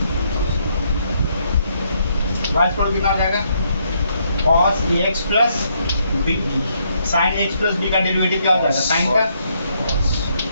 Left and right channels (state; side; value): inverted; both; correlation -0.74